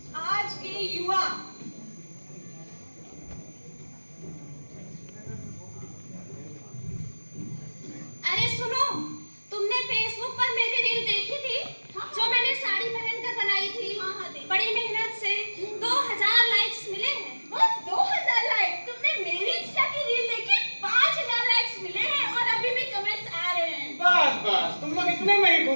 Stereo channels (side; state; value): both; inverted; correlation -1.00